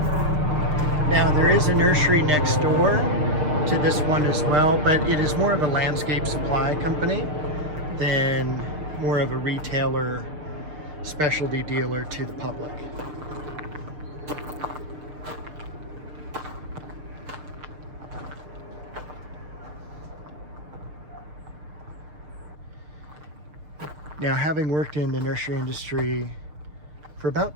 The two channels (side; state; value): left; late; 6.6 ms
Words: Now there is a nursery next door to this one as well, but it is more of a landscape supply company than more of a retailer, specialty dealer to the public. Now, having worked in the nursery industry for